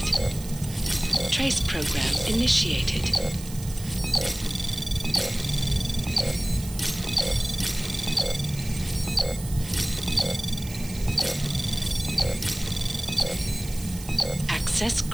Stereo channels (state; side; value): noise; right; hiss, 14 dB below the sound